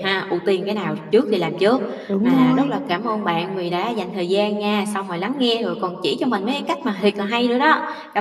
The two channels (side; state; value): both; identical; correlation 1.00